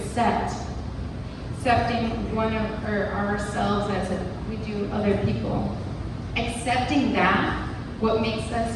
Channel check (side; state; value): both; identical; correlation 1.00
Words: one of ourselves as we do other people. Accepting that, what makes us